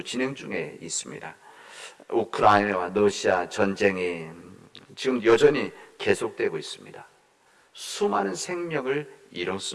진행 중에 있습니다. 우크라이나와 러시아 전쟁이 지금 여전히 계속되고 있습니다. 수많은 생명을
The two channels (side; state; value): both; identical; correlation 1.00